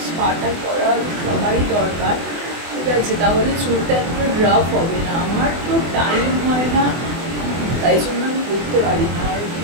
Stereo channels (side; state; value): left; late; 24 ms